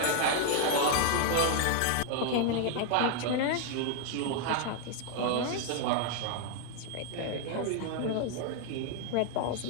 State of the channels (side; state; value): both; different; correlation 0.00